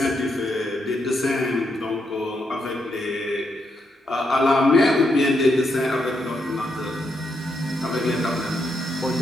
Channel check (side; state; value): both; normal; correlation 0.80